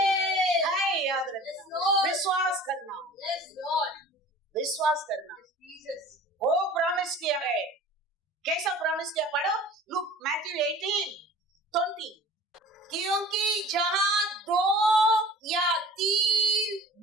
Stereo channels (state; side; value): normal; both; correlation 0.44